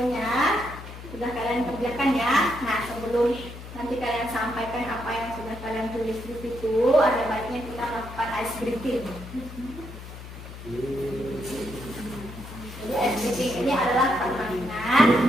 sudah kalian kerjakan ya. Nah, sebelum nanti kalian sampaikan apa yang sudah kalian tulis di situ, ada baiknya kita melakukan ice breathing. Jadi ice breathing ini adalah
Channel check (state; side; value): noise; left; hum, 13 dB below the sound